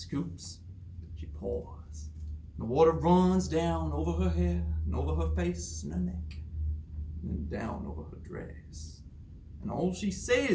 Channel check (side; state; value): both; identical; correlation 1.00